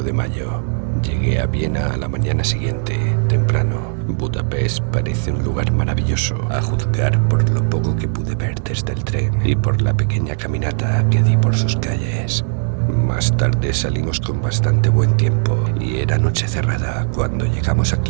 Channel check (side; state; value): left; silent; digital silence